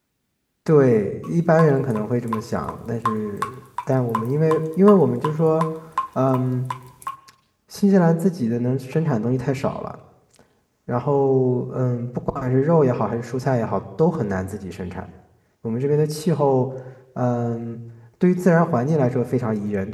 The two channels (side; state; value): both; identical; correlation 1.00